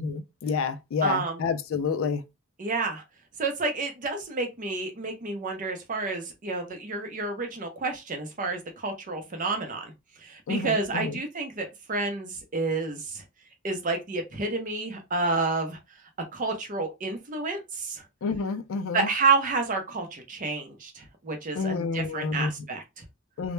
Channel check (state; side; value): normal; both; correlation -0.03